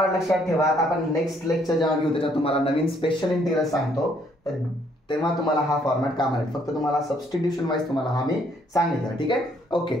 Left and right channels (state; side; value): normal; both; correlation 0.67